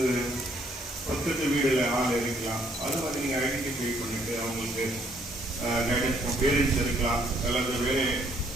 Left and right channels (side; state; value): both; normal; correlation 0.66